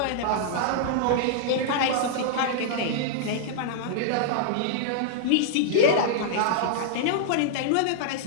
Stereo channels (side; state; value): both; different; correlation -0.02